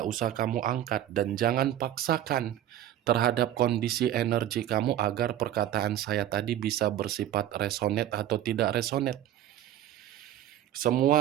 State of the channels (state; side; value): quieter; left; 12.0 dB